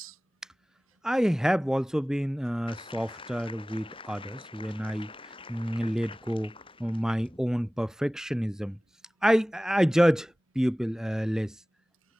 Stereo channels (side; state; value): both; normal; correlation 0.98